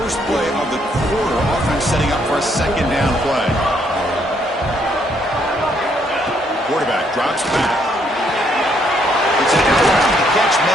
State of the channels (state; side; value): normal; both; correlation 0.71